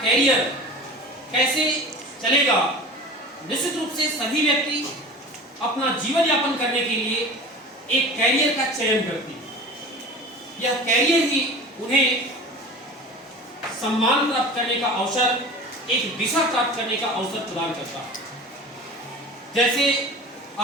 कैसे चलेगा। निश्चित रूप से सभी व्यक्ति अपना जीवन यापन करने के लिए एक कैरियर का चयन करते हैं। यह कैरियर ही उन्हें सम्मान प्राप्त करने का अवसर, एक दिशा प्राप्त करने का अवसर प्रदान करता है। जैसे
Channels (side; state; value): both; normal; correlation 0.37